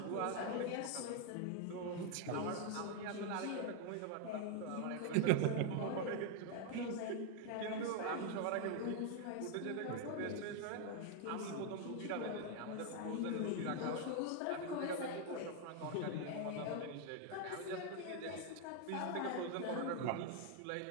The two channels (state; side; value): different; both; correlation 0.00